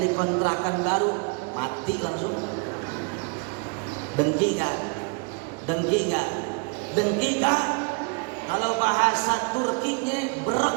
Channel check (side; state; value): left; quieter; 34.6 dB